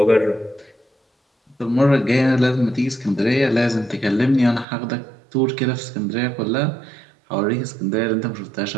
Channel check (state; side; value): drops out; left; at 4.7 s